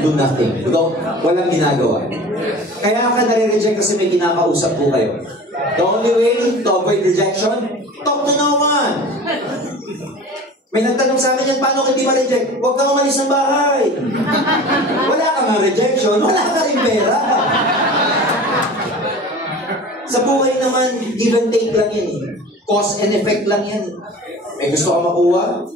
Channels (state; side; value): normal; both; correlation 0.39